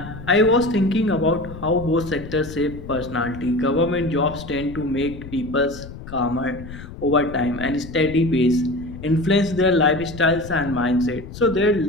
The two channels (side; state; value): left; noise; rumble, 13 dB below the sound